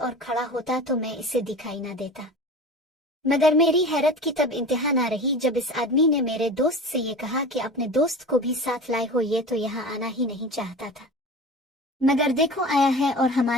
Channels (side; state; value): both; normal; correlation 0.35